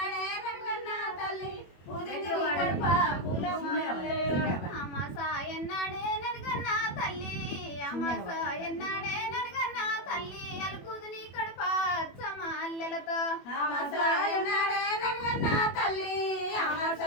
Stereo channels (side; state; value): right; late; 21 ms